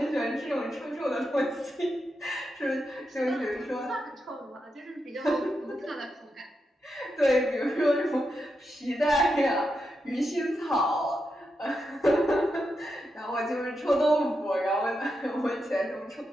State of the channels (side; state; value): both; normal; correlation 0.86